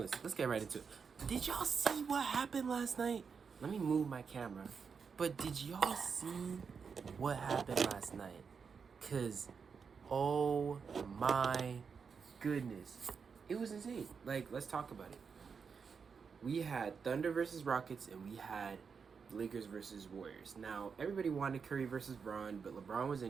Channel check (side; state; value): left; quieter; 5.9 dB